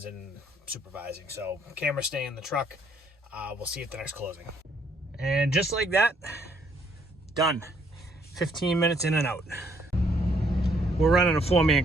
and supervising. So camera stay in the truck. We'll see you at the next closing. And just like that, done. 15 minutes in and out. We're running a 4-man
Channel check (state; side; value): normal; both; correlation 0.67